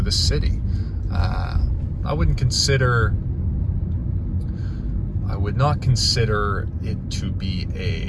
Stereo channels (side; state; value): both; identical; correlation 1.00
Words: city. I would not consider it to be